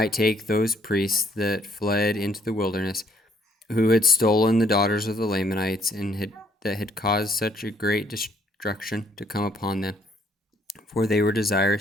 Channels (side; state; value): both; normal; correlation 0.67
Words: take those priests that fled into the wilderness, who had stolen the daughters of the Lamanites, and that had caused such a great destruction to come upon them. For they were